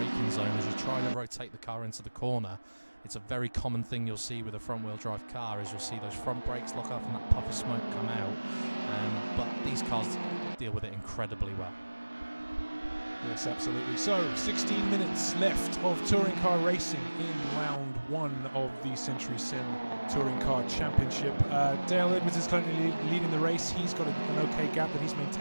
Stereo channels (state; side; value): inverted; both; correlation -1.00